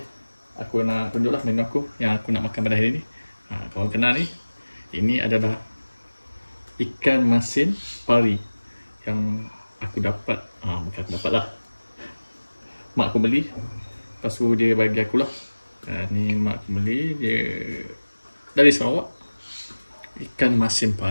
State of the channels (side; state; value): both; inverted; correlation -1.00